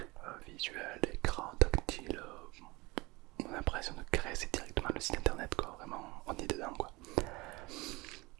Visuel, écran, tactile. On a l'impression de créer directement le site internet quoi. Vraiment, on est dedans quoi.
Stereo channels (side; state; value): left; quieter; 23.1 dB